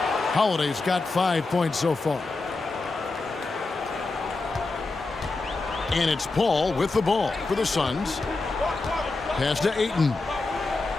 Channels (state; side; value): quieter; right; 3.5 dB